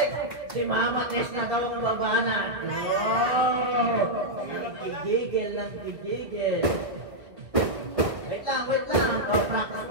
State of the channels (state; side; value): late; left; 1.6 ms